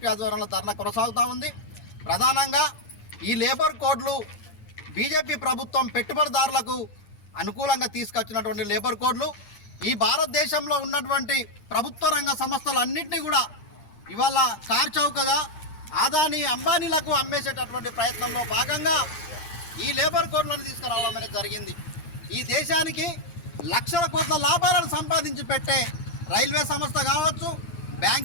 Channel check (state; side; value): late; right; 9.7 ms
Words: ఆధ్వర్యంలో ధర్నా కొనసాగుతూ ఉంది. ప్రధానంగా ఈ లేబర్ కోడ్లు బీజేపీ ప్రభుత్వం పెట్టుబడిదారులకు అనుకూలంగా తీసుకొచ్చినటువంటి లేబర్ కోడ్లు ఈ భారతదేశంలో ఉన్నటువంటి ప్రభుత్వ రంగ సంస్థలన్నింటినీ కూడా ఇవాళ కార్చౌకగా ఆదాని అంబానీలకు అమ్మేసేటటువంటి ప్రయత్నంలో భాగంగా ఈ లేబర్ కోడ్లను తీసుకురావడం అనేది జరిగింది. ఈ దేశానికి లక్షల కోట్ల లాభాలను సంపాదించి పెట్టే రైల్వే సంస్థ కావచ్చు,